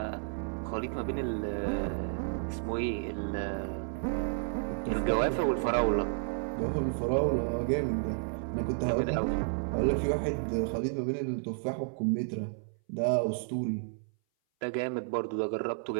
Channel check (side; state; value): left; silent; 57 dB below the other